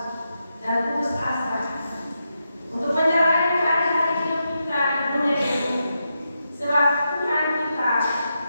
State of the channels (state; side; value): inverted; both; correlation -0.86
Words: dan putus asa untuk menjalani hari-hari hidup kita di dunia ini, sebab Tuhan kita